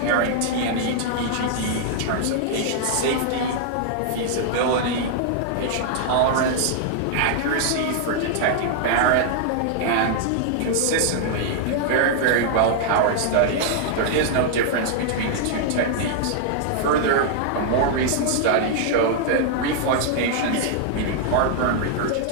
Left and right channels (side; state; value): both; different; correlation -0.01